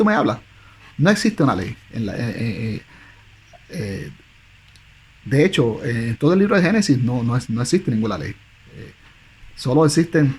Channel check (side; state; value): both; identical; correlation 1.00